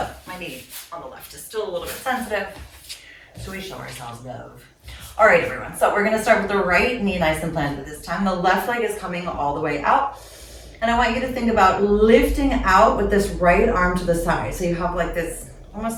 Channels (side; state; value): both; identical; correlation 1.00